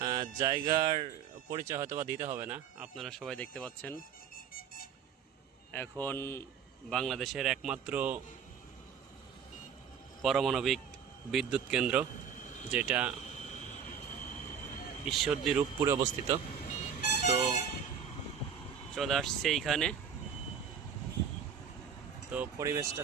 জায়গার পরিচয় হয়তো বা দিতে হবে না, আপনারা সবাই দেখতে পাচ্ছেন এখন বাংলাদেশের একমাত্র পারমাণবিক বিদ্যুৎ কেন্দ্র, যেটা ঈশ্বরদী রূপপুরে অবস্থিত। তো চলে আসছে এইখানে। তো পরিবেশটা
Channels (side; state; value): left; quieter; 7.5 dB